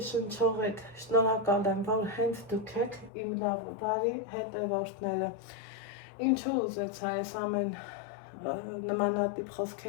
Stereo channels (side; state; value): right; drops out; at 3.1 s